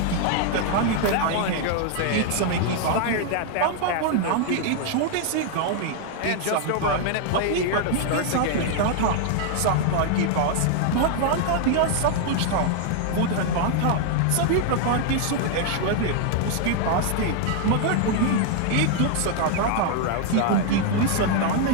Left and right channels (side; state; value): both; different; correlation 0.00